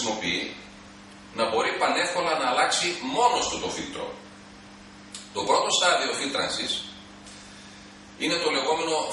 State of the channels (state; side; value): identical; both; correlation 1.00